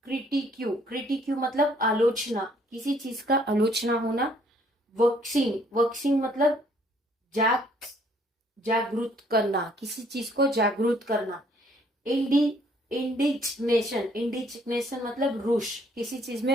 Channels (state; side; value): normal; both; correlation 0.63